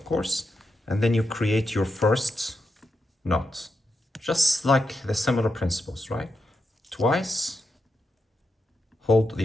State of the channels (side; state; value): both; normal; correlation 0.86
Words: course, and then you create your first knot. Just like the similar principles, right? Twice, hold